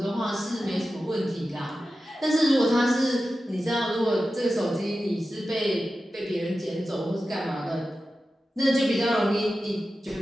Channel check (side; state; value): both; normal; correlation 0.93